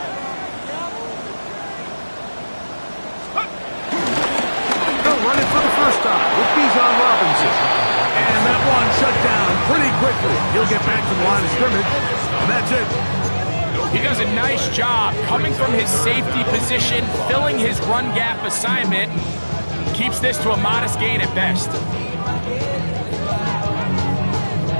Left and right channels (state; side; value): inverted; both; correlation -1.00